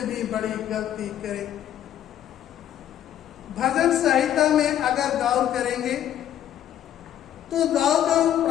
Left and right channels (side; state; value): right; quieter; 11.0 dB